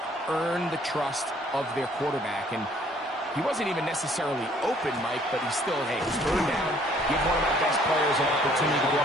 earn the trust of their quarterback. And he wasn't even necessarily open, Mike, but he's still, hey, turn down, give one of my best players an opportunity to go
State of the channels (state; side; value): normal; both; correlation 0.60